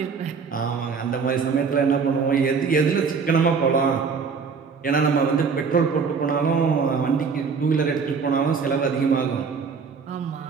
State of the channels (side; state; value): left; quieter; 5.5 dB